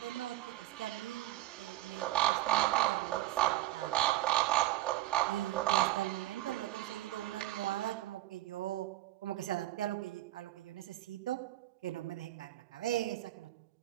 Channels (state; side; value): quieter; left; 15.3 dB